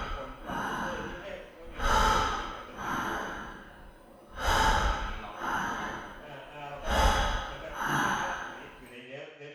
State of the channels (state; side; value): identical; both; correlation 1.00